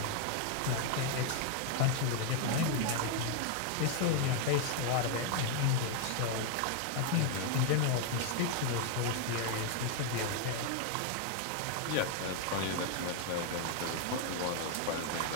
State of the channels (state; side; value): different; both; correlation 0.00